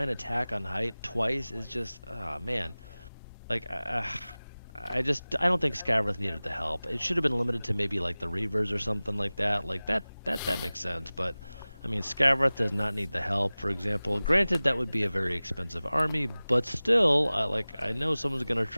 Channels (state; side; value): inverted; both; correlation -0.98